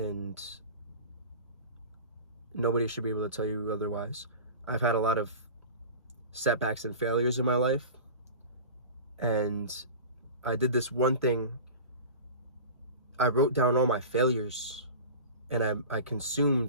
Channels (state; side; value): inverted; both; correlation -0.35